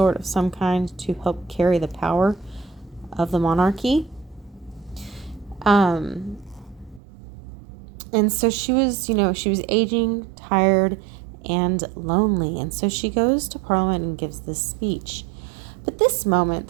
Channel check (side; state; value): left; drops out; at 7.0 s